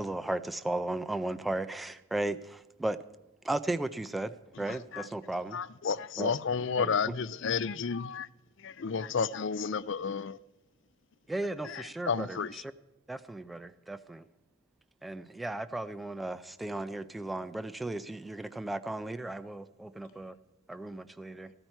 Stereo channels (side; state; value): both; normal; correlation 0.37